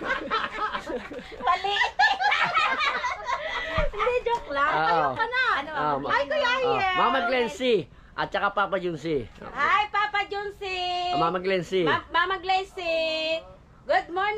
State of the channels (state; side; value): identical; both; correlation 1.00